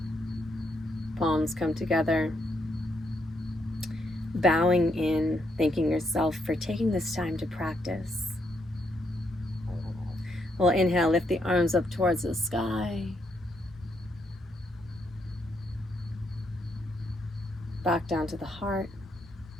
Palms come together. Bowing in, thanking yourself for taking this time to practice. We'll inhale, lift the arms up towards the sky. Back down to the heart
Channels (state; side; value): normal; both; correlation 0.77